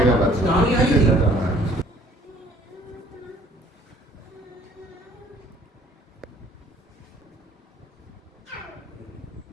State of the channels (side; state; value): both; normal; correlation 0.56